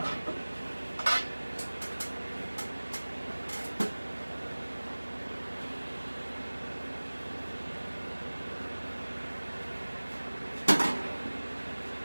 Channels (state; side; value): inverted; both; correlation -1.00